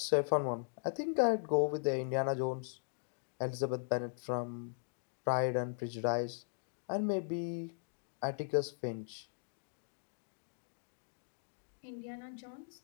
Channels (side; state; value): right; silent; digital silence